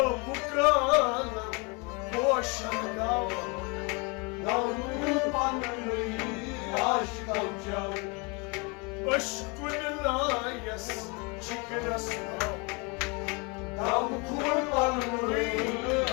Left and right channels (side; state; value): right; quieter; 30.1 dB